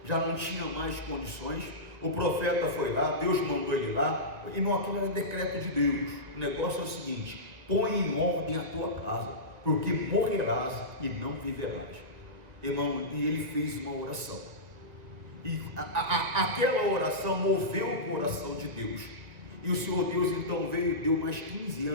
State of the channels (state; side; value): late; left; 2.0 ms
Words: já não tinha mais condições. O profeta foi lá, Deus mandou ele lá. Irmão, aquilo era decreto de Deus. O negócio é o seguinte: põe em ordem a tua casa, porque morrerás e não viverás. Irmão, e ele fez uma oração, e aquela oração moveu o coração de Deus, e o Senhor Deus então veio e deu mais 15